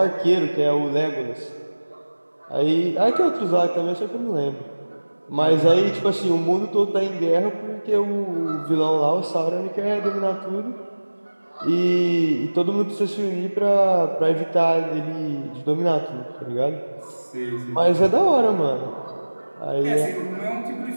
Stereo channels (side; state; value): both; inverted; correlation -1.00